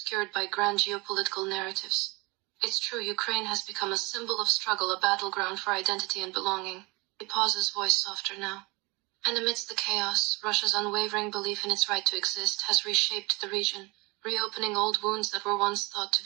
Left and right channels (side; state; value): left; quieter; 25.7 dB